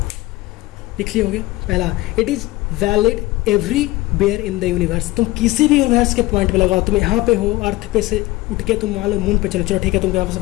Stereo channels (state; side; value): quieter; right; 19.0 dB